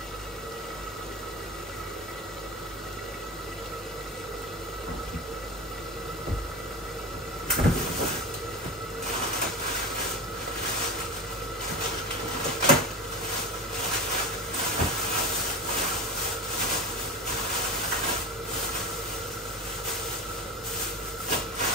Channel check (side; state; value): both; normal; correlation 0.25